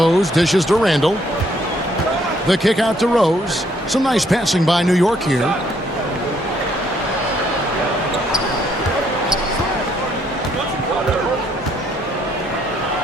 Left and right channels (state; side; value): normal; both; correlation 0.68